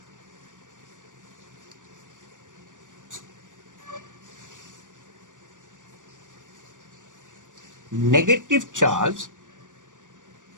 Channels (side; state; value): left; late; 0.87 ms